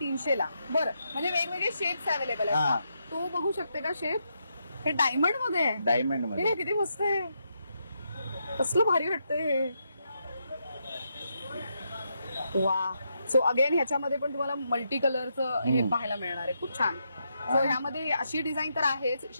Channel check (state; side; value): inverted; both; correlation -0.81